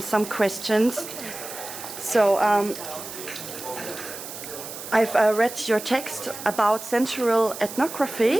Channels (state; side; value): noise; right; hiss, 11 dB below the sound